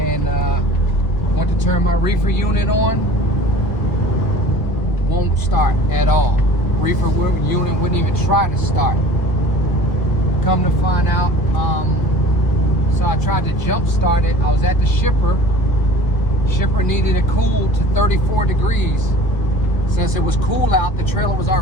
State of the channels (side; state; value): right; late; 1.5 ms